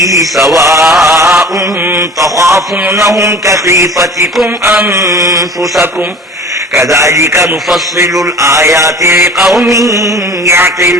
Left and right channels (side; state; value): both; normal; correlation 0.42